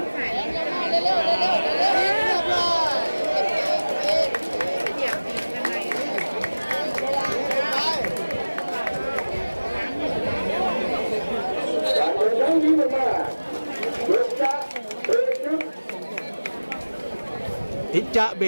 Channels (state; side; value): inverted; both; correlation -1.00